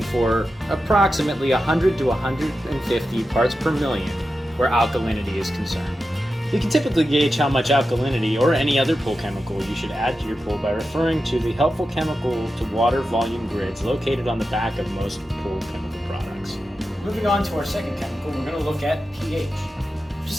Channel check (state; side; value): normal; both; correlation 0.91